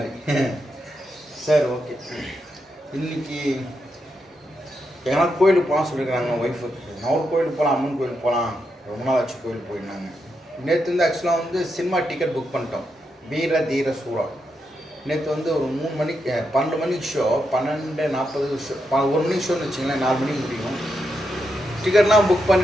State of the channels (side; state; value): both; normal; correlation 0.83